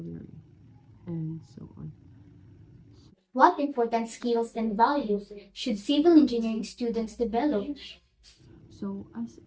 and so on. What important skills and values should civil engineering students develop? So, as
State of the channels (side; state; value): both; identical; correlation 1.00